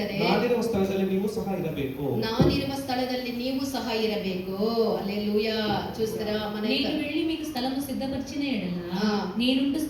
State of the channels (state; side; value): identical; both; correlation 1.00